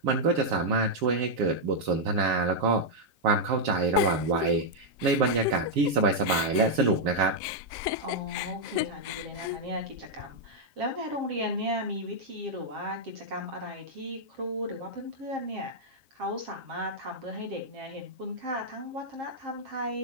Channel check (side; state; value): left; late; 7.3 ms